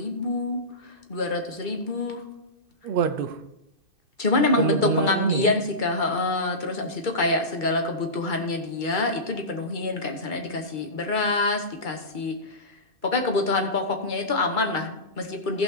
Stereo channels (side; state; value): left; late; 2.6 ms